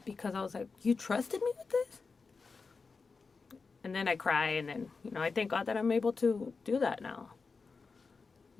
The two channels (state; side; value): quieter; right; 4.6 dB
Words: because I was like, you trusted me with this? And then I cry, and then, I thank God that I'm able to do that now.